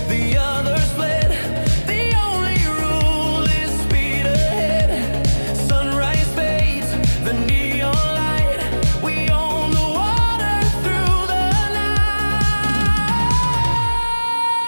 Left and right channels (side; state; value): both; inverted; correlation -1.00